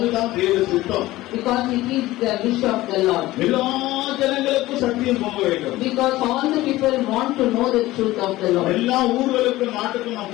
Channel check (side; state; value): right; quieter; 17.3 dB